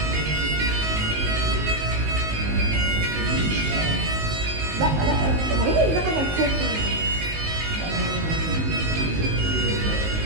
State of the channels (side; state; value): left; late; 19 ms